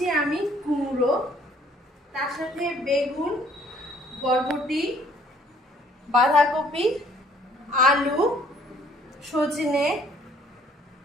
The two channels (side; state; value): both; normal; correlation 0.60